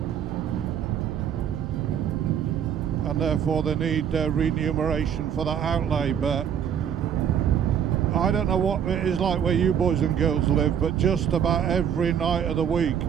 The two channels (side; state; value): left; quieter; 8.6 dB